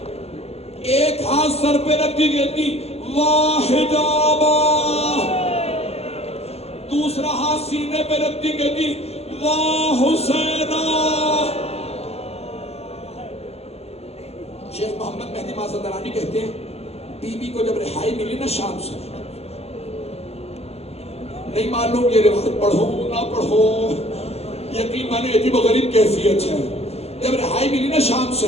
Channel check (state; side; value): late; right; 0.30 ms